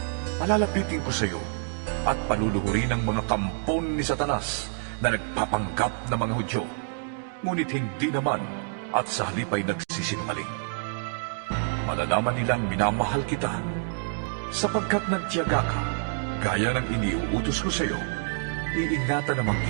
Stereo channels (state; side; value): silent; left; digital silence